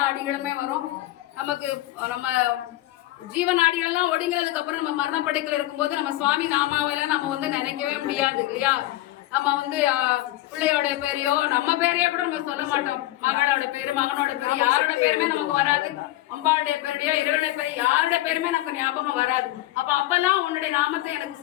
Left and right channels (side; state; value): right; quieter; 16.1 dB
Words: அடிகளுமே வரும். நமக்கு நம்ம ஜீவநாடிகள் எல்லாம் ஒடுங்கிறதுக்கு அப்புறம் நம்ம மரணப்படைக்கல இருக்கும்போது நம்ம சுவாமி நாமாவெல்லாம் நம்ம நினைக்கவே முடியாது இல்லையா. நம்ம பிள்ளையோட பேரையோ நம்ம பேரையோ கூட நம்ம சொல்ல மாட்டோம். மகளோட பேரு மகனோட பேரு யாரோட பேருமே நமக்கு வராது. அம்பாளுடைய பேரையோ இறைவனுடைய பேரு யாரோட பேருமே நமக்கு ஞாபகம் வராது. அப்பெல்லாம் உன்னுடைய நாமத்தை எனக்கு